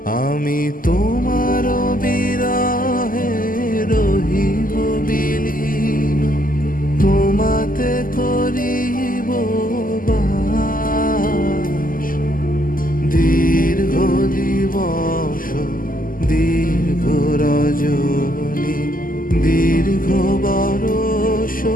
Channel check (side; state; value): right; late; 0.41 ms